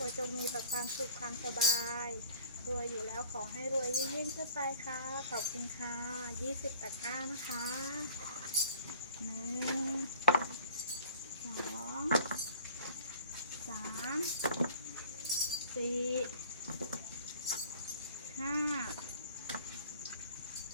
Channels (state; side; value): inverted; both; correlation -0.49